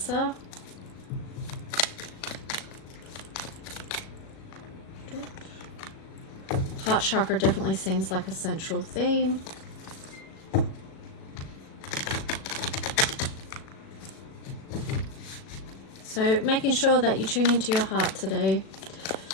Heart chakra definitely seems like a central theme. So making sure that you tune into your heart today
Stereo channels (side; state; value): right; late; 37 ms